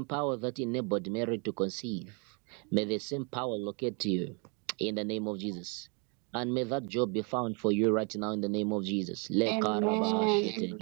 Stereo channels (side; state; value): left; quieter; 34.7 dB